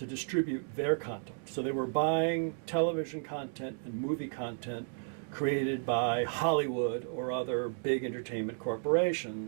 distribute their content. So they were buying television content and movie content created by Hollywood or other big entertainment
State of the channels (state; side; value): silent; left; 56 dB below the other